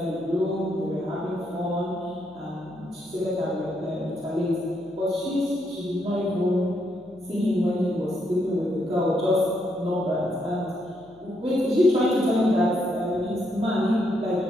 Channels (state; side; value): noise; left; hum, 27 dB below the sound